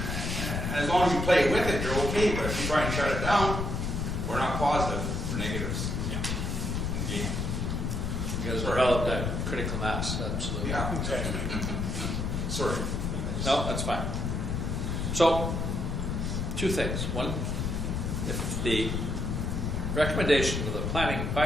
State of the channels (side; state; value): left; noise; rumble, 1 dB below the sound